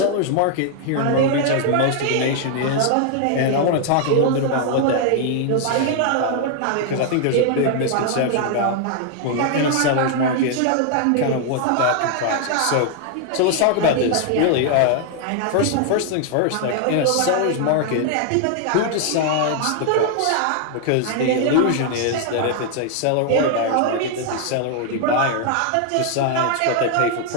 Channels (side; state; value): both; different; correlation 0.00